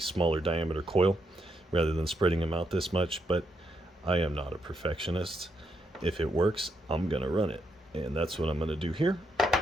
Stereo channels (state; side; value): normal; both; correlation 0.80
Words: diameter coil rather than spreading them out this much, but I am not a perfectionist. If it works, I'm gonna run it. And that's what I'm gonna do here